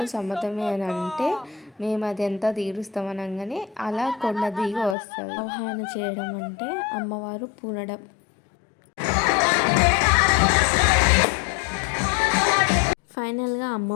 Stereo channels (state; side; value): drops out; right; at 5.0 s